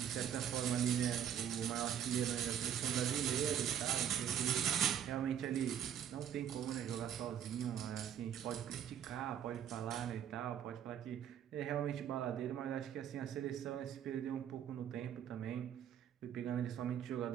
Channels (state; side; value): quieter; left; 9.5 dB